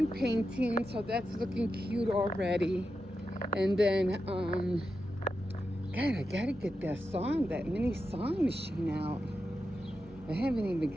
painting, so that's looking cute already. And then God, I gotta get that mini song machine out. I haven't even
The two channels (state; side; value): normal; both; correlation 0.89